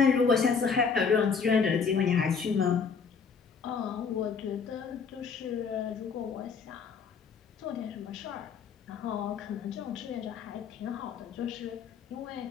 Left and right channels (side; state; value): right; quieter; 5.8 dB